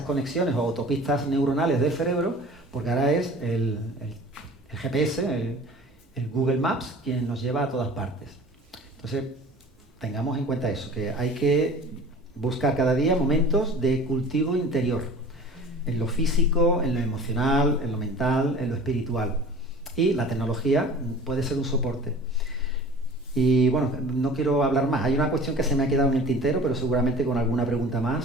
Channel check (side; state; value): both; normal; correlation 0.42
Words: conexiones o autopistas neuronales del cerebro, porque ahora es el GPS, el Google Maps, quien nos lleva a todas partes. Entonces, tengamos en cuenta eso, que hay que buscar cada día momentos de cultivo interior, en lo físico, en lo emocional, en lo mental, en lo espiritual. Y la tecnología puede ser un soporte. Y bueno, no quiero hablar más. Hay una cuestión que se me ha quedado en el tintero, pero seguramente con alguna pregunta